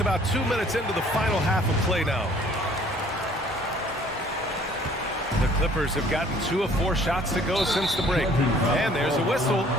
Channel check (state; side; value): normal; both; correlation 0.56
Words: about 2 minutes into the final half of play now. The Clippers have gotten 2 of 4 shots to go since the break. And there's a whistle.